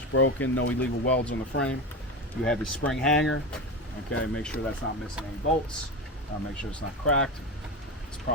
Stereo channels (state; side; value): normal; both; correlation 0.21